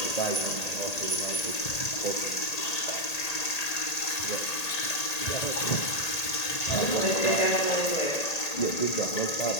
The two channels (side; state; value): right; late; 1.8 ms